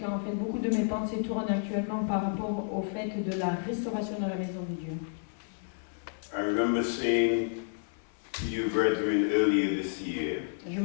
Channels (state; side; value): silent; right; 57 dB below the other